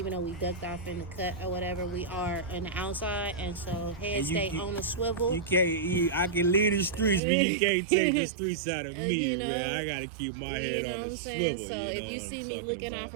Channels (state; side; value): drops out; left; at 7.2 s